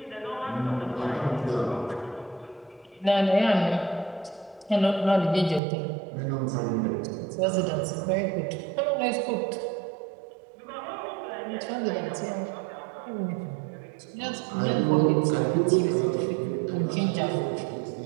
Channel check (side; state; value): left; drops out; at 5.6 s